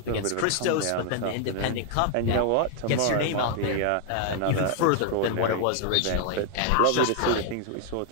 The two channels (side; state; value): both; different; correlation 0.00